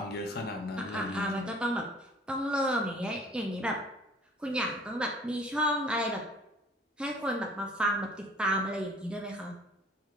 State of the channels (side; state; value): both; normal; correlation 0.52